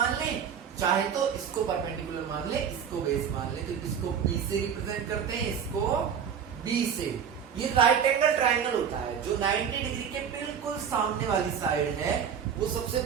ले, चाहे तो इसको परपेंडिकुलर मान ले, इसको बेस मान ले. तो इसको P से रिप्रेजेंट करते हैं, इसको B से. ये राइट एंगल ट्राइंगल होता है. जो 90 डिग्री के बिल्कुल सामने वाली साइड है वो सबसे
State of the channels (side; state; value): left; quieter; 7.7 dB